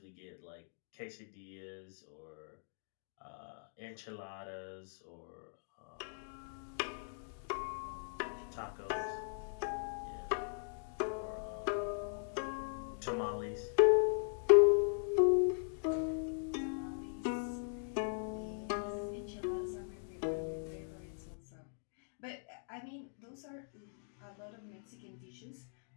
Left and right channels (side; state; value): right; silent; digital silence